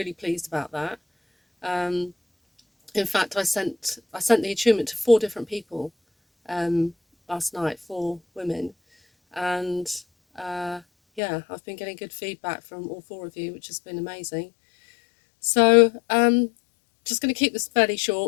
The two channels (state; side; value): drops out; right; at 11.2 s